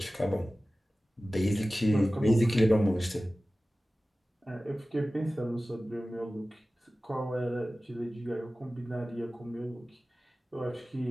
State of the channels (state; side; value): normal; both; correlation 0.96